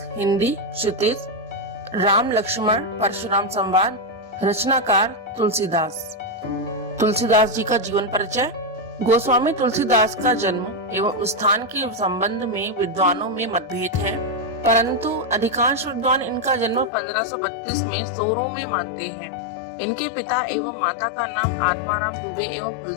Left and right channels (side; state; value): right; drops out; at 16.9 s